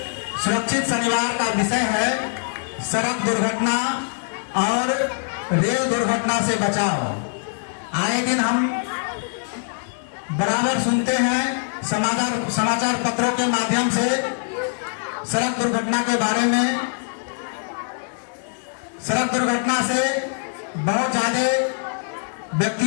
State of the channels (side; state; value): right; silent; 63 dB below the other